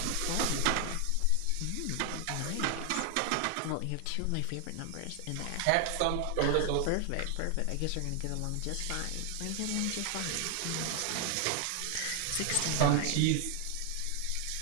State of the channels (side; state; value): both; different; correlation 0.00